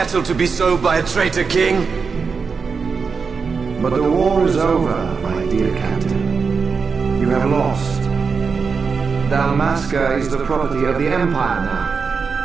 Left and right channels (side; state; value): left; quieter; 5.3 dB